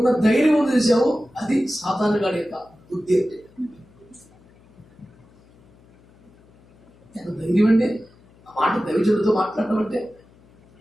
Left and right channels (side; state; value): left; noise; hum, 29 dB below the sound